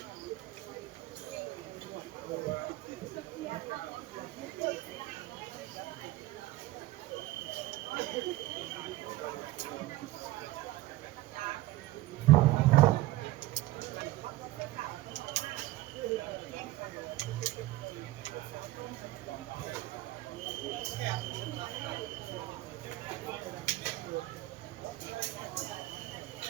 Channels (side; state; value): left; quieter; 16.9 dB